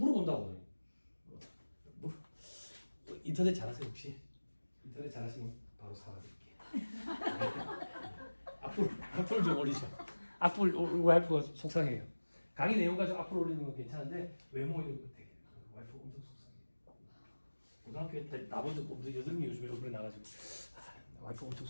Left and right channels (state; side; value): inverted; both; correlation -1.00